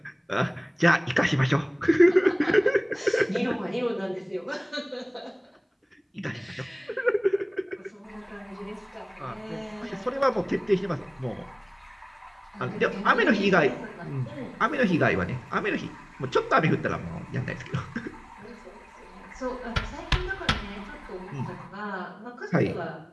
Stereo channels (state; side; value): identical; both; correlation 1.00